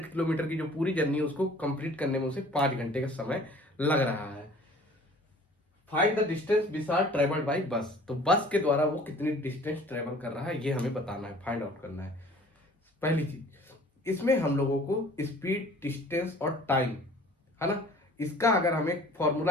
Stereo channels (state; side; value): normal; both; correlation 0.49